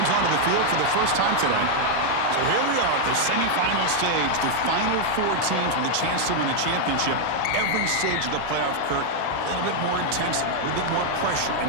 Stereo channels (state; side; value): different; both; correlation 0.00